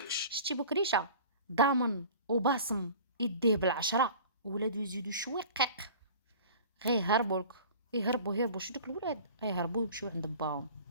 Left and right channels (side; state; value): both; inverted; correlation -0.42